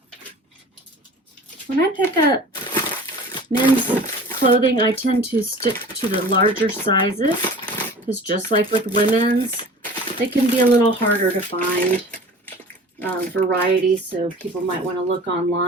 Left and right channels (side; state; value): both; normal; correlation 0.42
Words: When I pick up men's clothing, I tend to stick to the larger sizes because just like with women's, they can be a little harder to find variety, so people might want to look